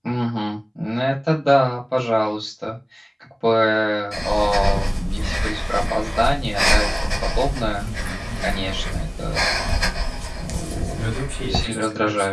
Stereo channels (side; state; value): both; identical; correlation 1.00